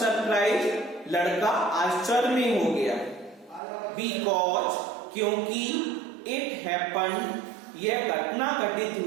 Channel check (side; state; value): left; drops out; at 3.6 s